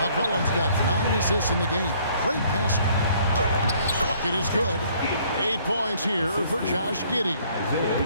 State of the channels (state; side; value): inverted; both; correlation -0.61